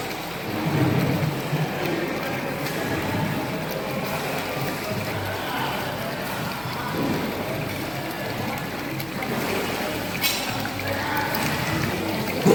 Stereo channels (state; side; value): noise; right; hum, 18 dB below the sound